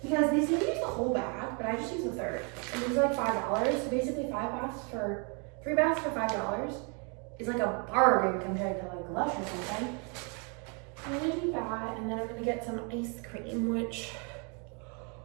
Because they seem to use the whole bag, but I just use a third. And these are like $5. So basically 3 baths for $5 is like a bargain compared to like Lush or something. I'm gonna do that, and then I'm gonna get some ice cream, which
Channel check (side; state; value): left; quieter; 35.8 dB